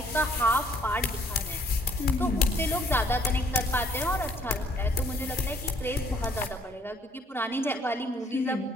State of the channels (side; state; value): both; normal; correlation 0.63